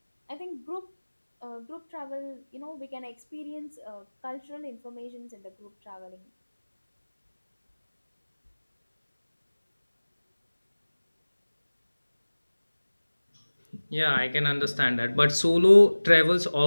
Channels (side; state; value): both; inverted; correlation -1.00